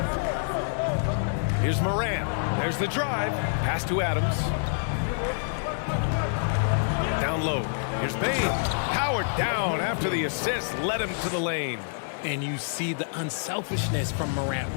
Here's Moran. There's the drive. Pass to Adams. Down low. Here's Bain. Powered down after the assist led him to the lane. And you see the unselfishness from Morant,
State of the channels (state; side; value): silent; right; digital silence